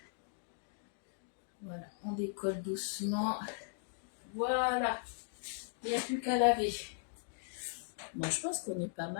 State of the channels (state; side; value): silent; right; digital silence